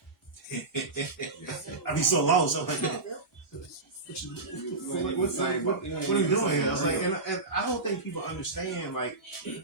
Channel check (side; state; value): left; quieter; 3.4 dB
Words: I be so lost. I'm like, what are you doing here? I was like, and I don't think people understand like